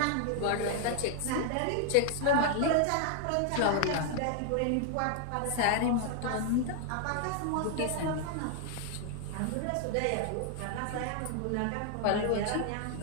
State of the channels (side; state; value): both; different; correlation 0.00